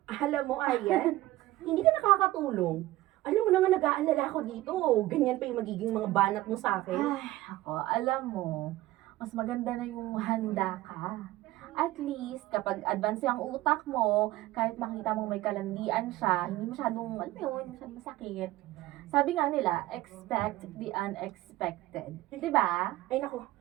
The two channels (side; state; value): left; quieter; 16.8 dB